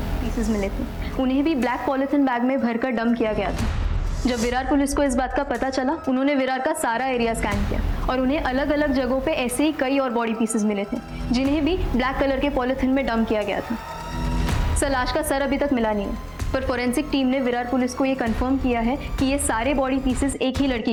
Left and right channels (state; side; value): identical; both; correlation 1.00